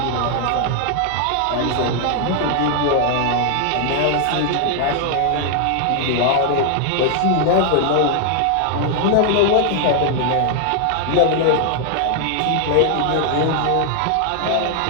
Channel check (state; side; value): different; both; correlation 0.00